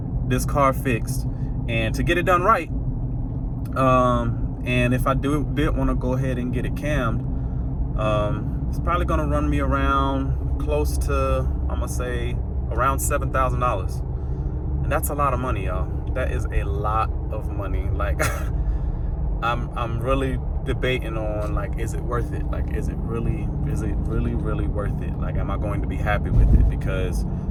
this car fixed and to get it done right, and if I did want to go ahead and get it cammed, it's probably gonna run me around close to, I'm gonna say around $7,000, and that's a lot of money, y'all. That is a lot of money. Like I'm really debating on, like, is it worth it? Like, is it really worth it? Like, am I going to be happy with it? Because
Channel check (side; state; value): both; identical; correlation 1.00